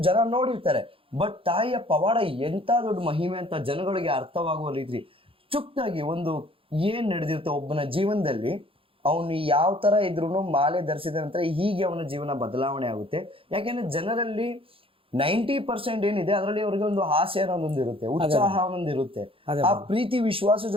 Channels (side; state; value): left; late; 0.26 ms